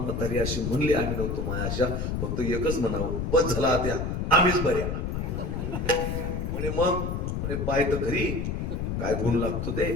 अशी म्हणली आम्ही नव्हतो मायाशा, फक्त एकच म्हणावं, बस झाला त्या आम्हीच बऱ्या. म्हणे मग म्हणे पाय तर घरी काय गुण लागतो ते.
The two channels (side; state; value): left; noise; rumble, 2 dB below the sound